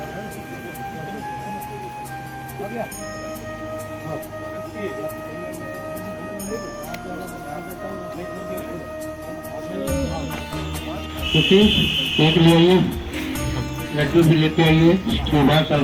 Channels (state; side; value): identical; both; correlation 1.00